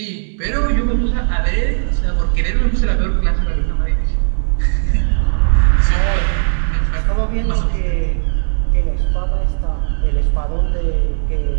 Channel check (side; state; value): left; silent; digital silence